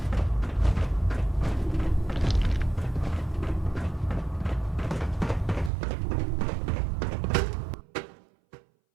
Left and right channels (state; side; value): drops out; left; at 5.7 s